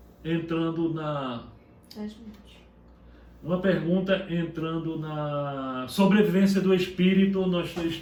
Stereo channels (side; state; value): both; identical; correlation 1.00